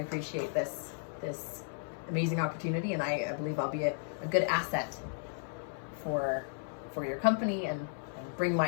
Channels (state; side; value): silent; right; 55 dB below the other